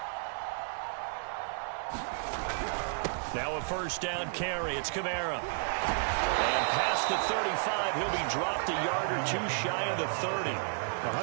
Now a first down carry. It's Kamara. And past the 35, he'll be dropped a yard or two shy of the 30.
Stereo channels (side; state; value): left; silent; 56 dB below the other